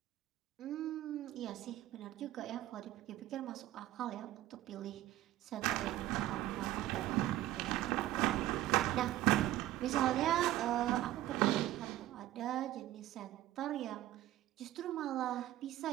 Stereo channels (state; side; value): quieter; left; 14.9 dB